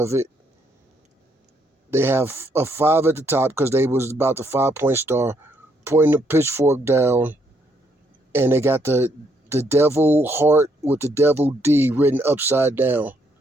it. They have a 5 at the top because they was about the 5-point star, pointing the pitchfork down. And they got the devil heart with the devil D written upside down.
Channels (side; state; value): both; normal; correlation 0.72